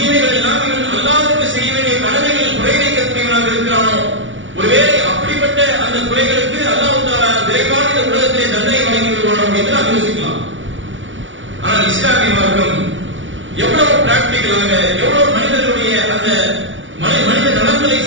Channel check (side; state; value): left; late; 0.56 ms